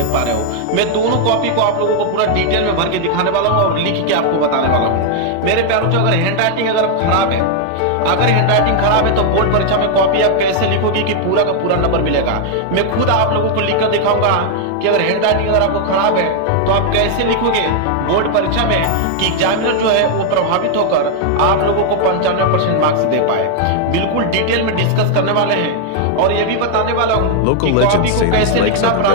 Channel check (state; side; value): different; both; correlation 0.00